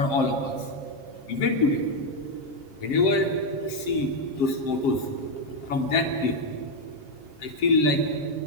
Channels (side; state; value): right; late; 7.4 ms